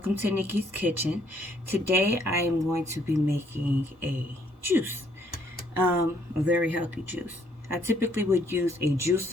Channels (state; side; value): normal; both; correlation 0.67